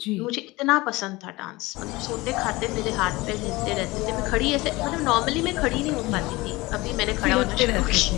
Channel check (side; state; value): right; quieter; 21.4 dB